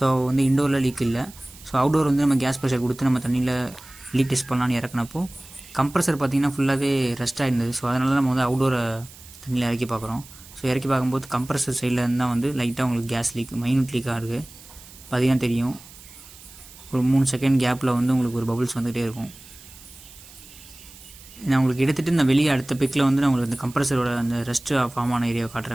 வந்து இண்டோரில் லீக் இல்லை. ஸோ அவுட்டோர் வந்து நம்ம கேஸ் ப்ரெஷர் கொடுத்து நம்ம தண்ணியில் லீக் டெஸ்ட் பண்ணலான்னு இறக்குனப்போ கம்ப்ரஸர் பார்த்திங்கன்னா ஃபுல்லாகவே ரெஸ்ட் ஆகிருந்தது. ஸோ அதனால தான் நம்ம வந்து அவுட்டோரை தண்ணியில் இறக்கி பார்க்குறோம். ஸோ இறக்கி பார்க்கும்போது கம்ப்ரஸர் சைடில் இருந்தால் வந்து லைட்டாக உங்களுக்கு கேஸ் லீக் மைனூட் லீக்காக இருக்குது. பார்த்தீங்கன்னா தெரியும், ஒரு 3 செகண்ட் கேப்பில் வந்து உங்களுக்கு ஒரு பபுள்ஸ் வந்துகிட்டே இருக்கும். நான் உங்களுக்கு எடுத்துகிட்டு இந்த வெளியே அடுத்த பிக்கில் வந்து நான் உங்களுக்கு இந்த கம்ப்ரஸரோட அந்த ரெஸ்ட்டு ஃபார்ம் ஆன ஏரியாவை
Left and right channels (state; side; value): noise; right; hiss, 20 dB below the sound